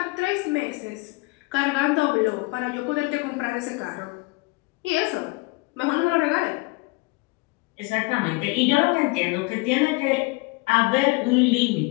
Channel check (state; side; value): quieter; right; 25.9 dB